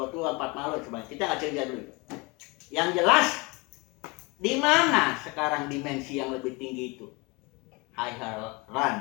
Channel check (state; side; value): quieter; right; 26.8 dB